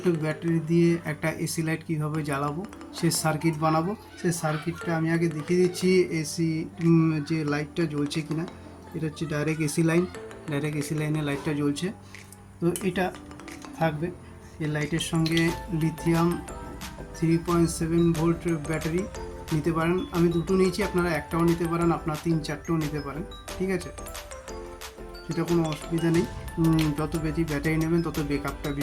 ব্যাটারি দিয়ে একটা এসি লাইট কীভাবে জ্বালাবো সে সার্কিট বানাবো। সেই সার্কিটটা আমি আগে দেখিয়ে দিচ্ছি এসি যে লাইটটা জ্বলছে কিনা। এটা হচ্ছে direct AC line, direct AC লাইনে লাইটটা জ্বলছে। তো এটা থাকবে এই লাইটের সঙ্গে লিথিয়াম 3.7 ভোল্ট ব্যাটারি নিতে পারেন। আমি দুটো নিয়েছি, আপনারা একটাও নিতে পারেন, আপনারা 3-4টেও নিতে পারেন, ঠিক আছে, সেটা কোনো অসুবিধা নেই। যত বেশি ব্যাটারি নেবেন তত ব্যাকআপটা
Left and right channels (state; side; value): identical; both; correlation 1.00